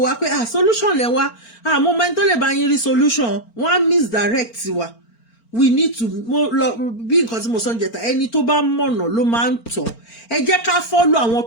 wá pé solution lẹ wá mo mọ ẹni tó lè bá yín rí solution wọ́n á misdirect wa. We need to bí nǹkan tí mo sọ ń jẹta ẹni tó bá mọ̀nà ló máa ń tọ̀ ẹ jẹ́ ká follow àwọn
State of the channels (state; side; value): late; right; 4.4 ms